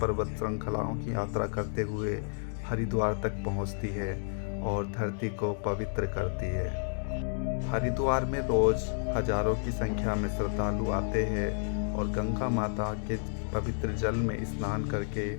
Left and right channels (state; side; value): silent; right; digital silence